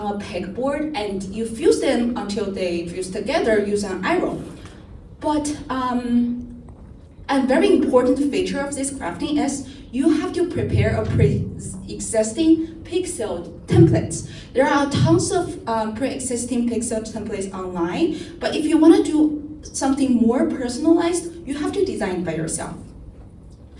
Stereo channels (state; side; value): identical; both; correlation 1.00